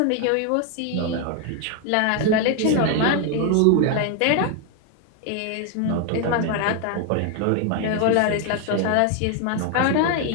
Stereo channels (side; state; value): both; different; correlation 0.01